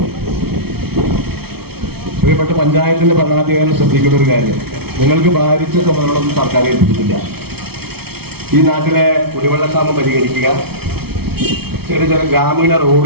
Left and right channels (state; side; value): late; left; 0.96 ms